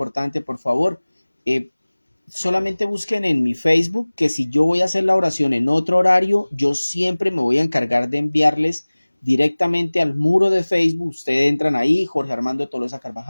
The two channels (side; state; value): both; inverted; correlation -1.00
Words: por favor. Solamente busquen en mi Facebook que si yo voy a hacer la oración en otro horario, yo siempre me voy a encargar de enviarles directamente al muro de Facebook. Ustedes entran ahí, Jorge Armando Tolosa